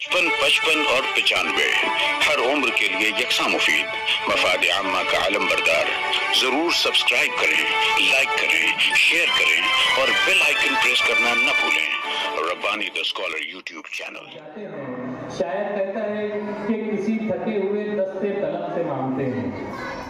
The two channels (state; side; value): identical; both; correlation 1.00